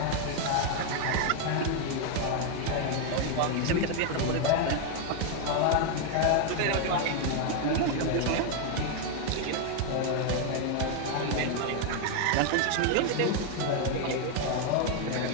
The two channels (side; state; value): both; different; correlation 0.01